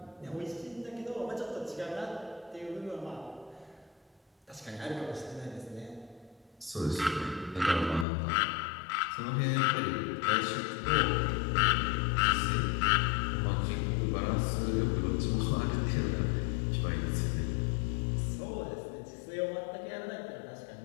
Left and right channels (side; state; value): right; drops out; at 8.1 s